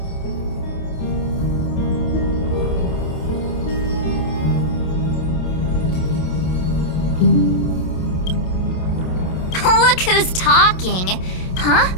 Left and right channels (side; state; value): right; late; 27 ms